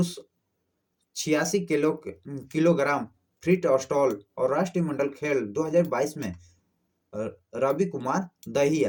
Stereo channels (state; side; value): identical; both; correlation 1.00